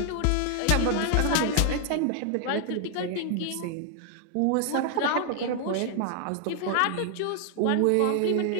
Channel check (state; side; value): different; both; correlation 0.00